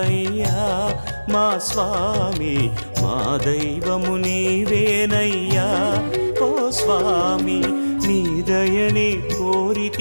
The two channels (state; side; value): inverted; both; correlation -1.00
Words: మా స్వామి, మా దైవము నీవేనయ్యా ఓ స్వామి. నీ దయని